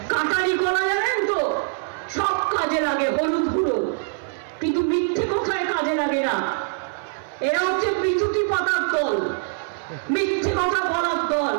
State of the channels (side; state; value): left; silent; 58 dB below the other